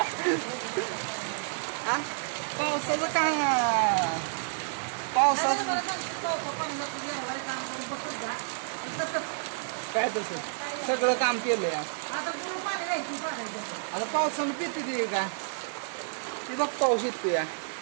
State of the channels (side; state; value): left; silent; digital silence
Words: पावसाचं काय पावसाचं काय तसं सगळं काम केलंय आता पावसानं पिते ते का ती बघ पाऊस येते या